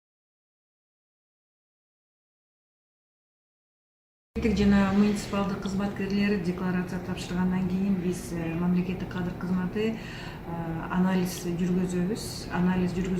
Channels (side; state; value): both; identical; correlation 1.00